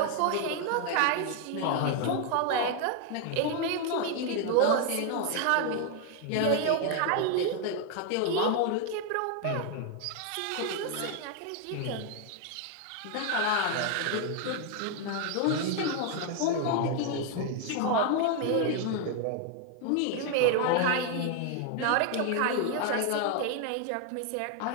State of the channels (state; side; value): different; both; correlation 0.01